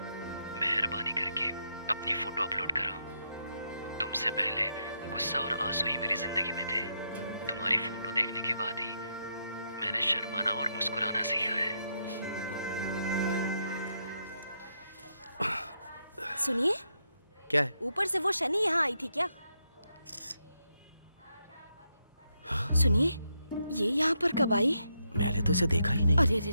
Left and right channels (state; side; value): inverted; both; correlation -0.80